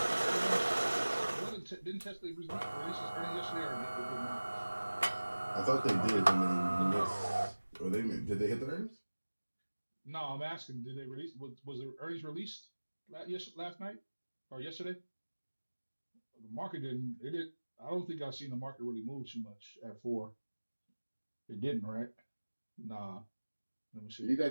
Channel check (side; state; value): both; inverted; correlation -1.00